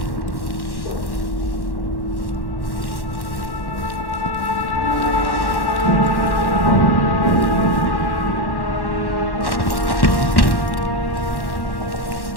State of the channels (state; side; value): late; right; 1.1 ms